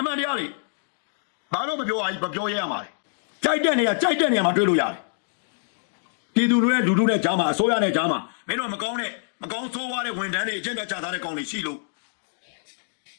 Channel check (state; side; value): silent; right; digital silence